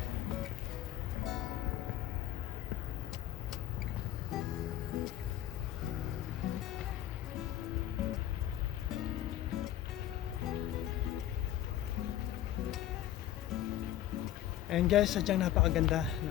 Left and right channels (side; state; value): right; quieter; 12.9 dB